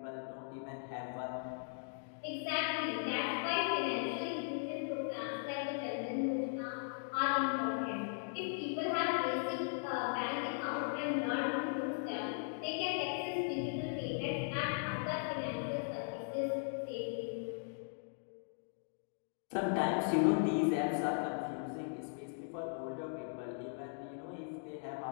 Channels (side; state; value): right; silent; digital silence